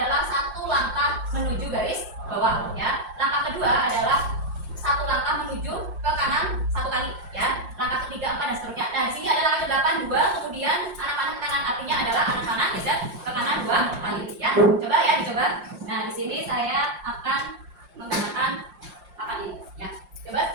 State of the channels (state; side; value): late; left; 5.7 ms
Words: 1 langkah menuju garis bawah. Ya, langkah kedua adalah 1 langkah menuju ke kanan 1 kali. Ya, langkah ketiga 4 dan seterusnya. Nah, di sini ada langkah ke-8 2, kemudian anak panah ke kanan artinya adalah anak panah geser ke kanan 2 kali. Ya, coba ya dicoba. Nah, di sini saya akan menggunakan papan ini ya. Coba